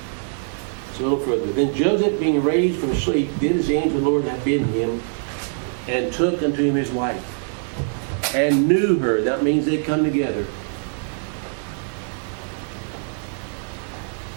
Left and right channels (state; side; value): silent; left; 63 dB below the other